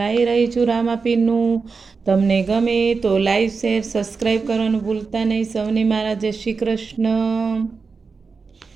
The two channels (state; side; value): quieter; left; 4.8 dB